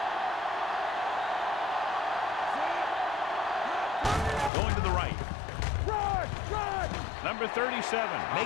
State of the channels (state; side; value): drops out; right; at 4.5 s